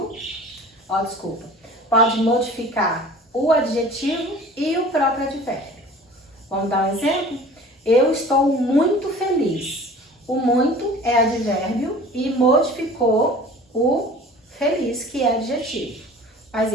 pode modificar o adjetivo e o próprio advérbio. Vamos dar um exemplo? Eu estou muito feliz. O muito é advérbio e modificou o feliz, que é adjetivo. Mas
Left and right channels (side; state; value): both; normal; correlation 0.44